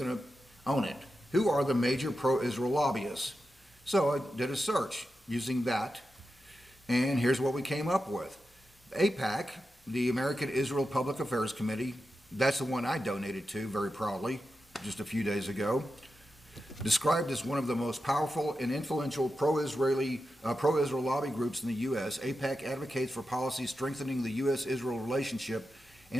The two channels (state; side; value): normal; both; correlation 0.90